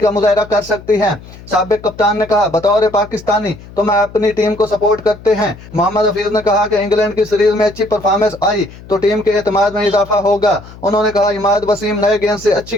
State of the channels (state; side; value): noise; left; hum, 19 dB below the sound